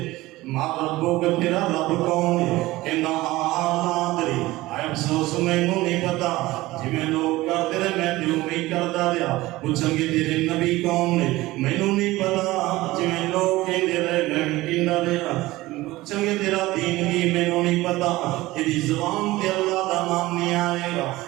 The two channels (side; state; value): left; quieter; 18.5 dB